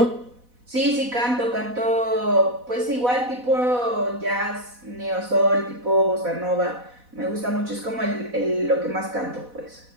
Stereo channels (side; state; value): left; late; 4.1 ms